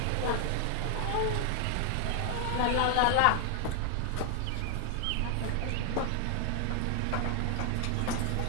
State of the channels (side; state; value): both; different; correlation 0.00